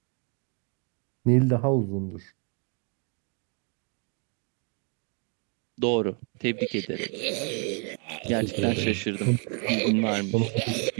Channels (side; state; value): left; quieter; 38.2 dB